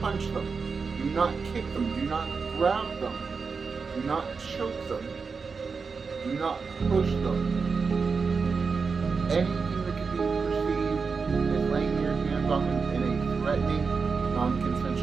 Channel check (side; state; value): left; quieter; 5.0 dB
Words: punch them. Do not kick them. Do not grab them. Do not choke them. Do not push them. Anything that can be perceived as laying your hands on them in a threatening,